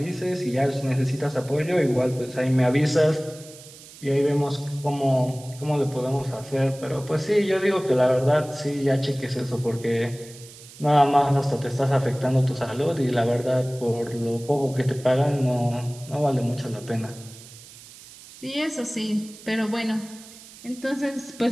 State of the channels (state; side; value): noise; right; hiss, 19 dB below the sound